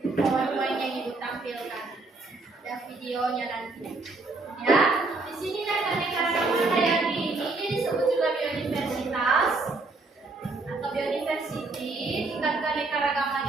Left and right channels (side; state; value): left; quieter; 3.4 dB